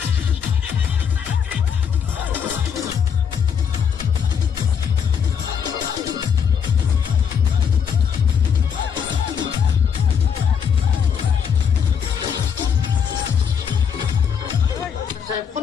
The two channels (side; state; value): right; quieter; 7.3 dB